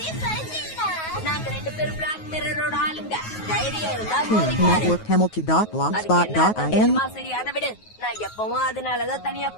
நாங்க ரெண்டு பேரும் பிளாக் மிரரோட ஆளுங்க. தைரியம் இருந்தா Network Hamilton.blogspot.in. சரி, அதை விடு. நான் எப்பவும் அதனாலதான் தனியா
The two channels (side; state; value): right; late; 9.4 ms